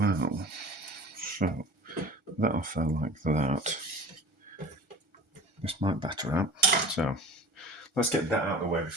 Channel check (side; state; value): left; late; 1.3 ms